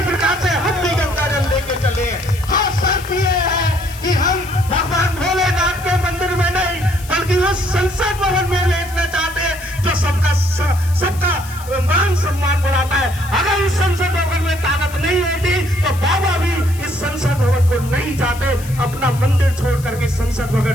प्रकार से हम भी गंगा जल लेके चले हैं। हाँ, शर्त ये है कि हम भगवान भोलेनाथ के मंदिर में नहीं बल्कि उस संसद भवन में लेटना चाहते हैं जो सबका मान सम्मान बढ़ाता है। अगर इस संसद भवन में ताकत नहीं होती तो बाबा भी इस संसद भवन को नहीं जाते, अपना मंदिर छोड़ करके संसद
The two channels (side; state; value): left; noise; hiss, 17 dB below the sound